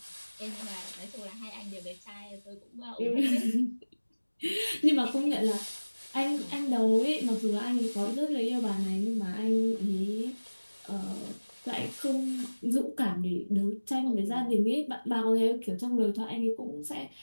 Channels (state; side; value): inverted; both; correlation -1.00